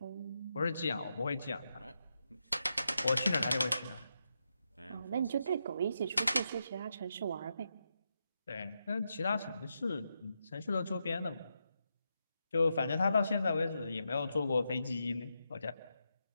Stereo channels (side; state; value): both; inverted; correlation -0.85